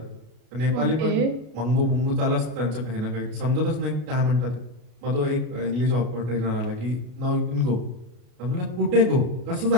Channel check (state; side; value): late; left; 33 ms